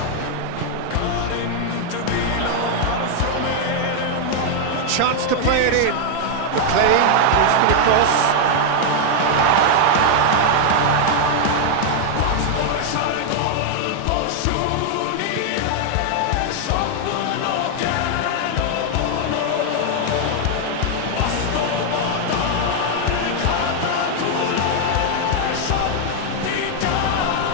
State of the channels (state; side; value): different; both; correlation 0.00